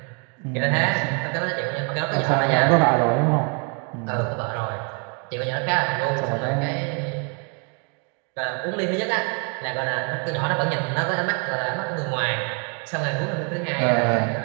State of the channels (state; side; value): quieter; left; 35.1 dB